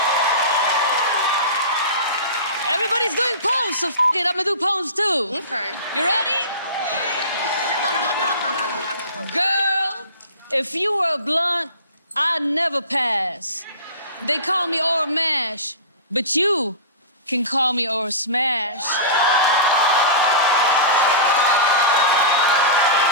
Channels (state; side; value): inverted; both; correlation -0.32